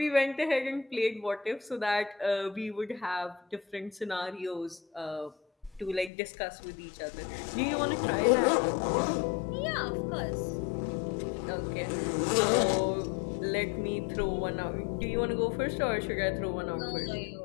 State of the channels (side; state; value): right; drops out; at 6.1 s